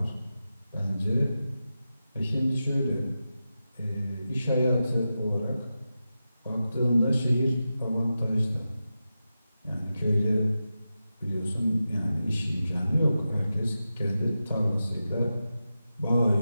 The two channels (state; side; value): inverted; both; correlation -0.92